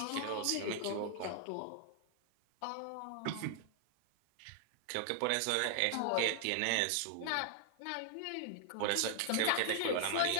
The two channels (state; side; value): different; both; correlation 0.00